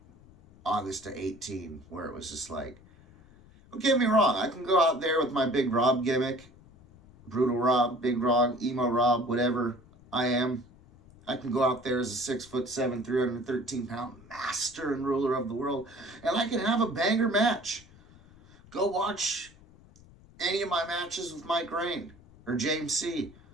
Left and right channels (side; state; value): left; noise; rumble, 25 dB below the sound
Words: August to 18, where it was just like, don't get me wrong, I can go out there with my big Rob gimmick, Brutal Rob, Big Rob, Emo Rob, whatever I am. I can go out there as a 6'7", 313-pound master and ruler of the world, and I can have a banger match. Go watch any of my matches with Mike Rain or James C.